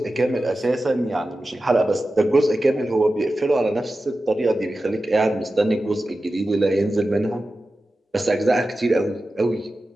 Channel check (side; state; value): both; normal; correlation 0.93